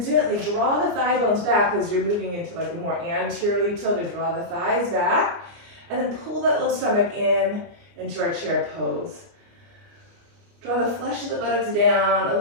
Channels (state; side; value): late; left; 29 ms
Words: gently draw the thigh bones back as you're moving into like a more anteriorly tilted. Draw the thighs back, and then pull that low stomach in into our chair pose. Draw the flesh of the buttocks down a